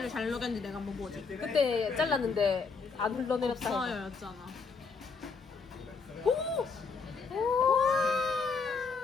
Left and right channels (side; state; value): right; quieter; 4.9 dB